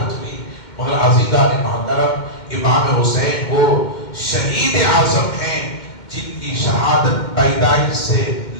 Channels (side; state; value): right; late; 2.1 ms